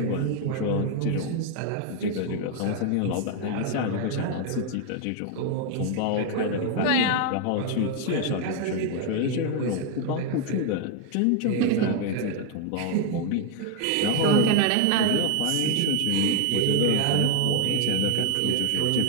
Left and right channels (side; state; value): both; different; correlation 0.01